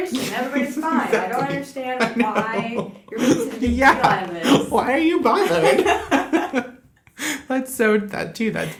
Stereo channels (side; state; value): both; identical; correlation 1.00